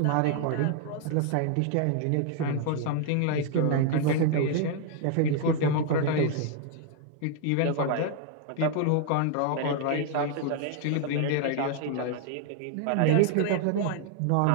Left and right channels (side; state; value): both; different; correlation 0.00